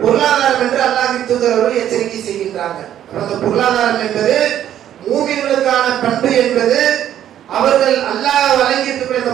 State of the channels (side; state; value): left; quieter; 11.0 dB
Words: பொருளாதாரம் என்று அல்லாஹ்வின் தூதர் அவர்கள் எச்சரிக்கை செய்கின்றாங்க. அந்த பொருளாதாரம் என்பது மூமின்களுக்கான பண்பு என்பது அவர்கள் அல்லாஹ் வழங்கி இருக்கக்கூடிய அந்த